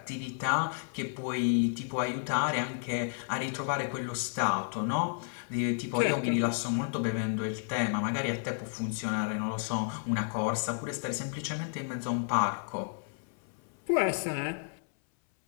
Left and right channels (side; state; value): right; silent; 57 dB below the other